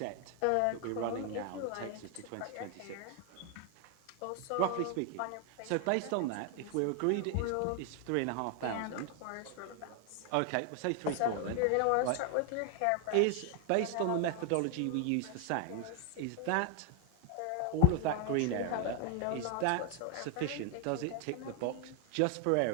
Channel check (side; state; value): both; different; correlation 0.00